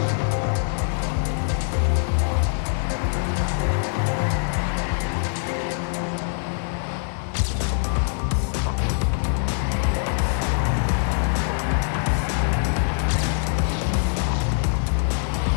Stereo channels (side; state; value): right; silent; 63 dB below the other